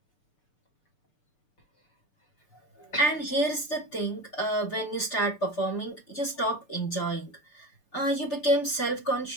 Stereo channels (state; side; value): late; right; 6.8 ms